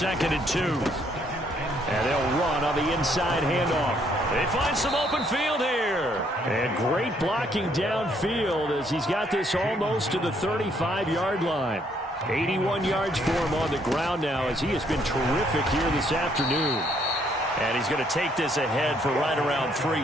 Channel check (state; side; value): normal; both; correlation 0.68